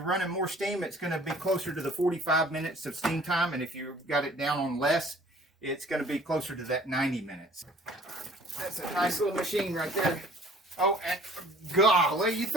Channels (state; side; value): normal; both; correlation 0.53